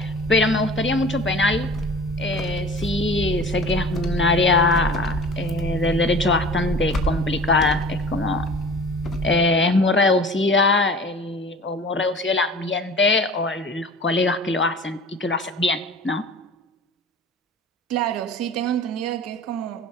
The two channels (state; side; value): normal; both; correlation 0.42